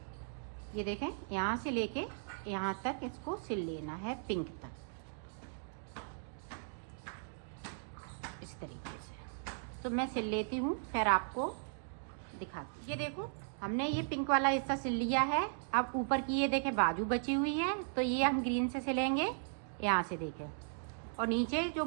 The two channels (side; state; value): left; silent; digital silence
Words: ये देखें यहाँ से लेके यहाँ तक इसको सिल लेना है, पिंक तक, इस तरीके से। तो मैं सिल लेती हूँ, फिर आपको दिखाती हूँ। ये देखो हमने ये पिंक वाला हिस्सा सिल लिया है। अब ऊपर की ये देखें बाजू बची हुई है, तो ये हम ग्रीन से सिलेंगे, यहाँ से देखें। और नीचे जो